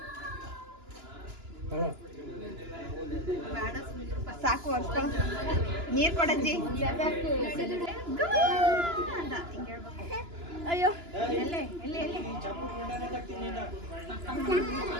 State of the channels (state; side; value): late; left; 2.9 ms